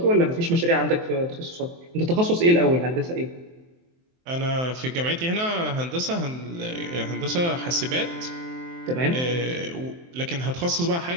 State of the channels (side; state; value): left; late; 23 ms